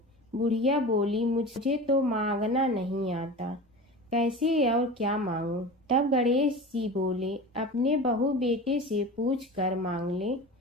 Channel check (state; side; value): normal; both; correlation 0.32